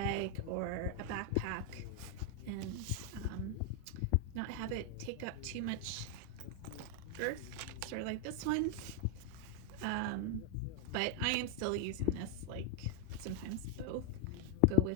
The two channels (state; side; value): different; both; correlation 0.00